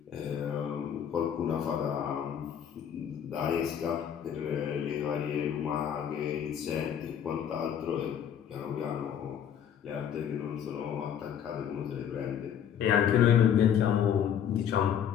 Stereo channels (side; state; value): right; quieter; 8.9 dB